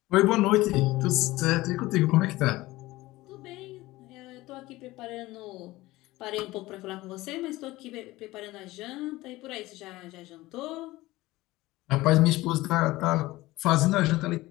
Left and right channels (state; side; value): quieter; right; 18.6 dB